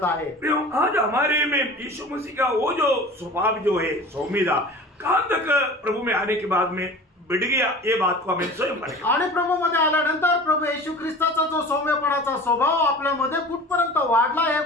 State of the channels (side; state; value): both; normal; correlation 0.39